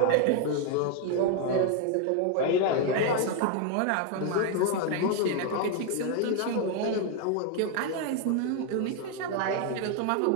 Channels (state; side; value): different; both; correlation 0.01